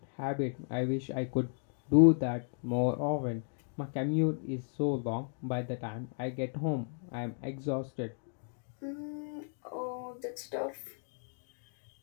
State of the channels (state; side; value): silent; right; digital silence